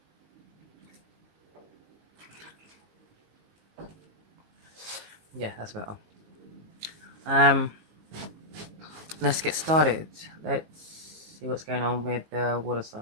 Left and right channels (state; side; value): late; left; 19 ms